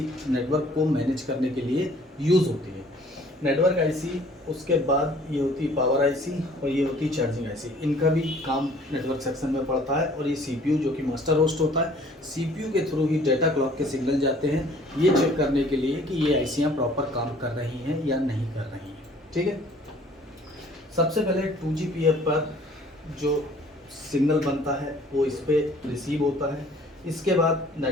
नेटवर्क को मैनेज करने के लिए यूज़ होती है। नेटवर्क IC, उसके बाद ये होती है पावर IC, और ये होती है चार्जिंग IC। इनका भी काम नेटवर्क सेक्शन में पड़ता है। और ये CPU जो कि मास्टर होस्ट होता है, CPU के थ्रू ही डेटा क्लॉक के सिग्नल जाते हैं, ये चेक करने के लिए कि ये ICयाँ प्रॉपर काम कर रही हैं या नहीं कर रही हैं। ठीक है, सबसे पहले 2GPF पर जो सिग्नल बनता है वो इस पर रिसीव होता है। इसके बाद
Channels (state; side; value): normal; both; correlation 0.55